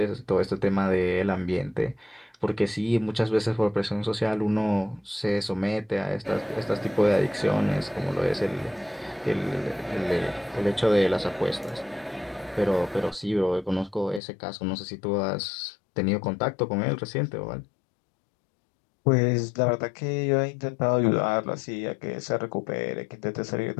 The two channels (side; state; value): right; drops out; at 14.2 s